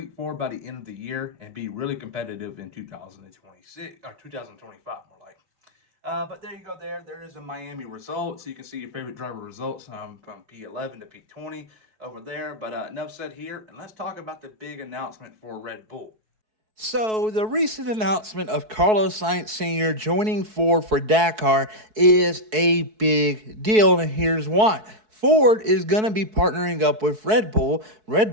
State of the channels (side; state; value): left; late; 4.6 ms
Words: forward by the end of the year and be really competitive in 2026 or 2025, more like. But there you go. There is a Miami result. So you can see your favorite driver results from P11 to P20 over there. But enough said here, and let's talk about the big announcement for Red Bull. So, the recent announcement of Carlos Sainz Sr. joining Ford for Dakar is a big deal, and here's why. Ford is going to be partnering up with Red Bull. Red